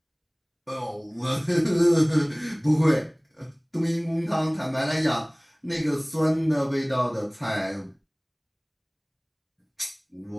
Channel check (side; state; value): both; identical; correlation 1.00